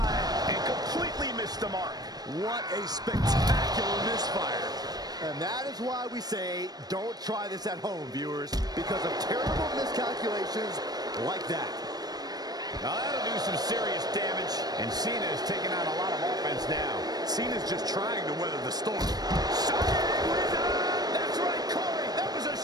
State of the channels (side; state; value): left; late; 0.19 ms